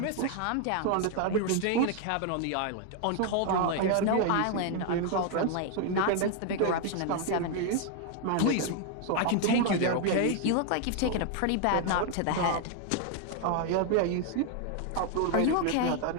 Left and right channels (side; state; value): both; different; correlation 0.00